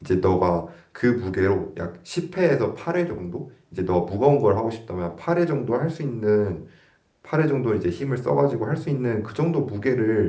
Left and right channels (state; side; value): identical; both; correlation 1.00